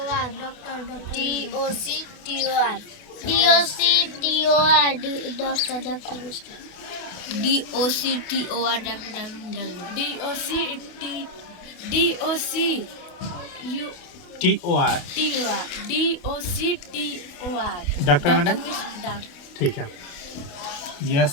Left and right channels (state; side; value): late; right; 28 ms